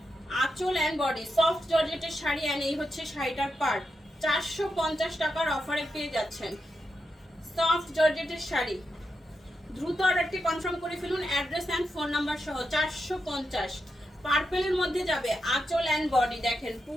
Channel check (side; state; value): both; normal; correlation 0.87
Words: আঁচল এন্ড বডি সফট জর্জেটের শাড়ি এন্ড এই হচ্ছে শাড়িটার পার্ট। 450 টাকার অফারে পেয়ে যাচ্ছেন সফট জর্জেটের শাড়ি। দ্রুত অর্ডারটি কনফার্ম করে ফেলুন অ্যাড্রেস এন্ড ফোন নাম্বার সহ। 450 পার্পেলের মধ্যে যাবে আঁচল এন্ড বডি। দেখেন